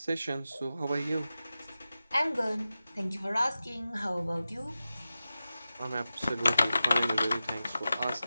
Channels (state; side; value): inverted; both; correlation -0.93